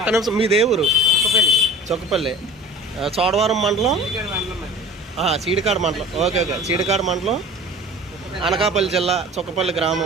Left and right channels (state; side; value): normal; both; correlation 0.42